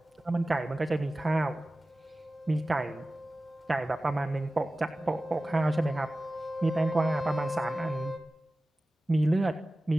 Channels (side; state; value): both; normal; correlation 0.96